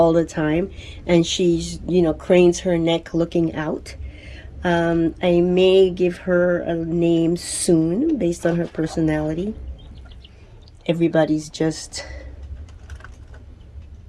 the time, and she's, cranes her neck looking out. I may give her a name soon based on her personality. Everybody's just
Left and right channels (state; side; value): identical; both; correlation 1.00